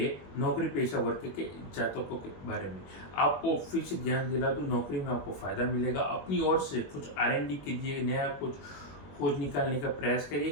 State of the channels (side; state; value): right; late; 21 ms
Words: नौकरी पेशा वर्ग के जातकों के बारे में। आपको फिर से ध्यान दिला दूं, नौकरी में आपको फायदा मिलेगा। अपनी ओर से कुछ R&D कीजिए, नया कुछ खोज निकालने का प्रयास करिए